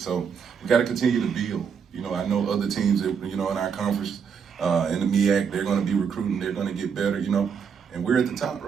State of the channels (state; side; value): quieter; left; 6.7 dB